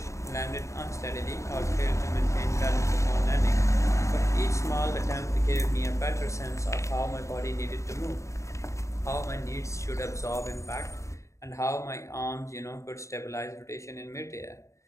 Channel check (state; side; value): late; right; 0.14 ms